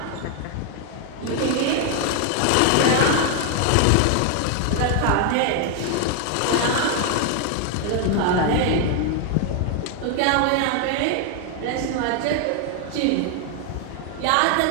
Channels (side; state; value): both; different; correlation 0.00